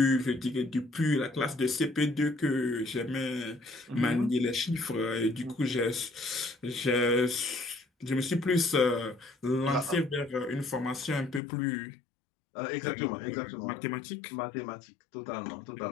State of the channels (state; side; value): drops out; right; at 11.4 s